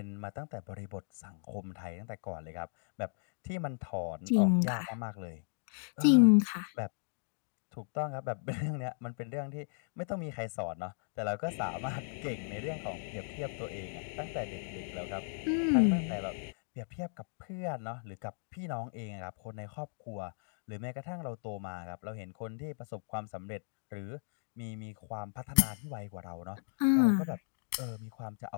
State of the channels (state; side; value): silent; right; digital silence